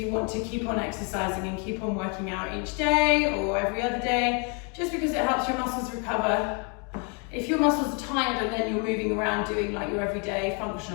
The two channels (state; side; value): quieter; right; 35.9 dB